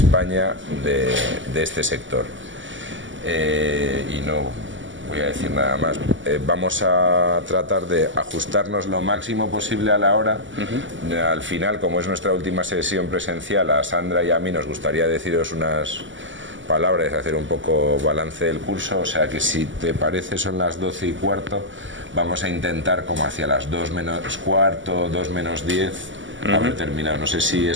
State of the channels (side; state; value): left; late; 0.55 ms